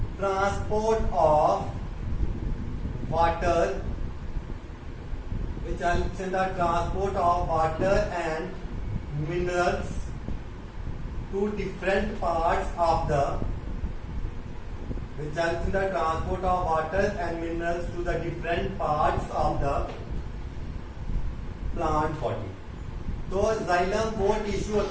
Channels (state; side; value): identical; both; correlation 1.00